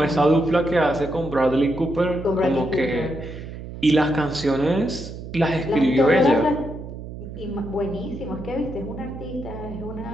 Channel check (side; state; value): right; noise; hum, 11 dB below the sound